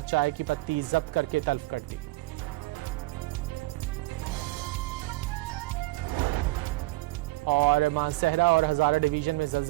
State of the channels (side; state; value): left; quieter; 19.9 dB